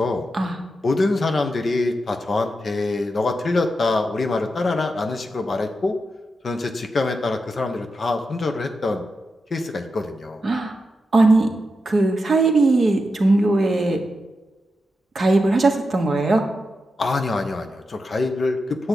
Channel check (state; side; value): normal; both; correlation 0.88